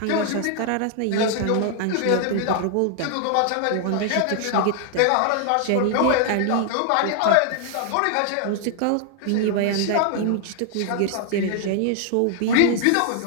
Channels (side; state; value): both; different; correlation 0.00